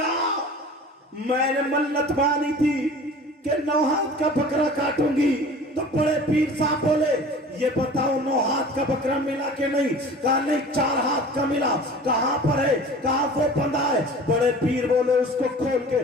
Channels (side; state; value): both; normal; correlation 0.42